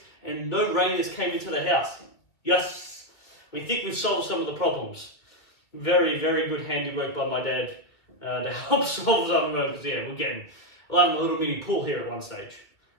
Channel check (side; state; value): right; late; 2.2 ms